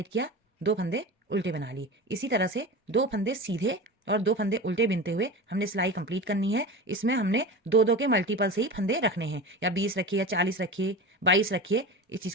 किया, 2 फंदे उल्टे बना लिए। इसी तरह से 2 फंदे सीधे और 2 फंदे उल्टे बिनते हुए हमने सिलाई कंप्लीट करनी है। इसमें हमने 2-2 के मल्टीपल से ही फंदे रखने हैं, या 20 रखिए या 40 रखिए, 22 रखिए। इस चीज़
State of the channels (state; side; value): normal; both; correlation 0.29